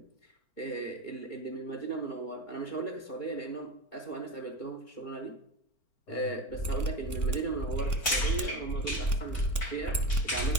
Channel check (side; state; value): right; late; 4.4 ms